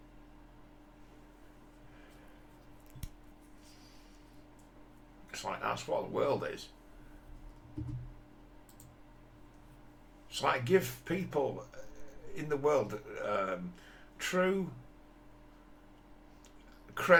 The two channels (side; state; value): both; identical; correlation 1.00